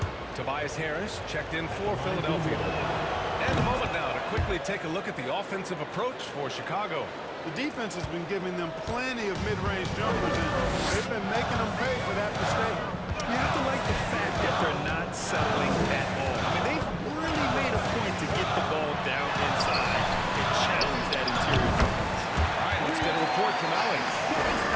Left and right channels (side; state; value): both; identical; correlation 1.00